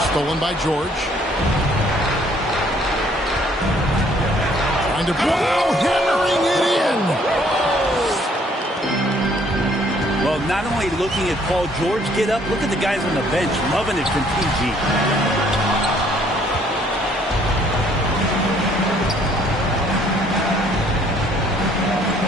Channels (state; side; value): normal; both; correlation 0.62